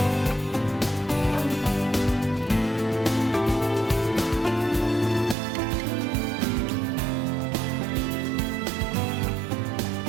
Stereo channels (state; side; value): drops out; left; at 5.4 s